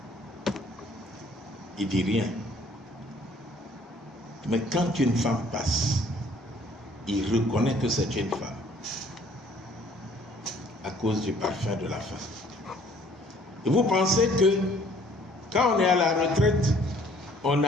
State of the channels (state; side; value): normal; both; correlation 0.58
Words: il dit rien. Mais quand une femme passe, il reconnaît que c'est une femme à cause du parfum de la femme. Et vous pensez que quand on est à la retraite, on